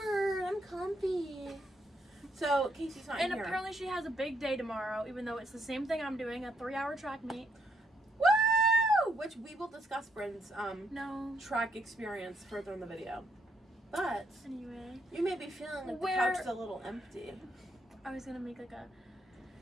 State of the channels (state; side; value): normal; both; correlation 0.74